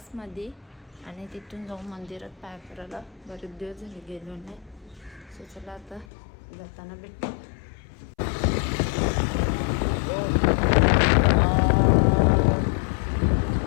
आणि तिथून जाऊन मंदिरात पाय करायला. बरेच दिवस झाले गेलो नाही. सो चला आता जाताना भेटतो.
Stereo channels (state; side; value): drops out; right; at 6.1 s